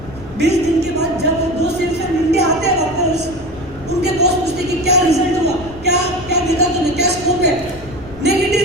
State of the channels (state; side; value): noise; left; rumble, 18 dB below the sound